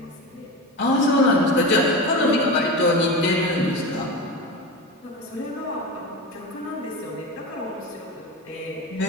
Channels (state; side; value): normal; both; correlation 0.24